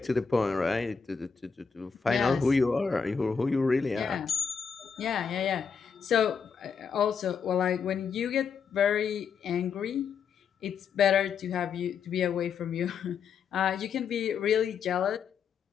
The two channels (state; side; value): quieter; right; 6.2 dB